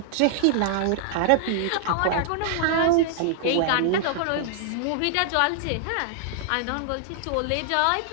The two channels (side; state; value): both; different; correlation -0.01